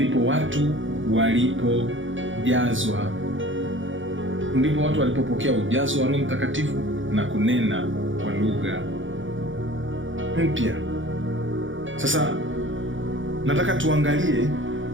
watu walipopokea ujazo wa Roho Mtakatifu na kunena kwa lugha mpya. Sasa nataka tuangalie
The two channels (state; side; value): late; left; 0.56 ms